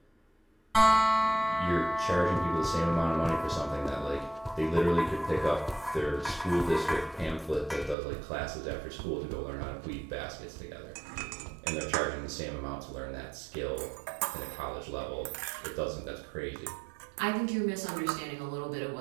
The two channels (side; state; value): left; drops out; at 8.0 s